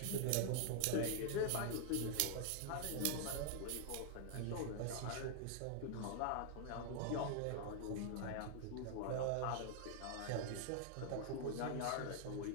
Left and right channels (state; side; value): different; both; correlation 0.00